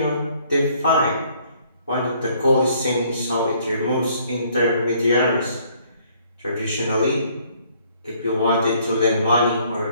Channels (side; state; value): both; inverted; correlation -0.63